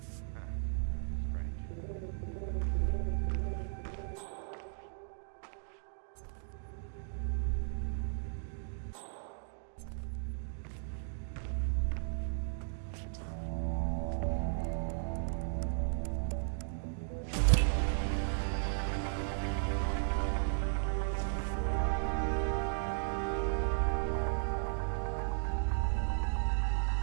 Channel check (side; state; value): left; silent; digital silence